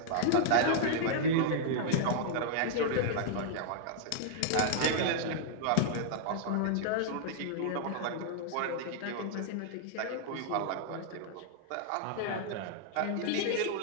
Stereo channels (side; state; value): both; different; correlation -0.01